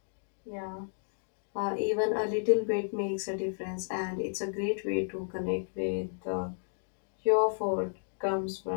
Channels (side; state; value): right; silent; digital silence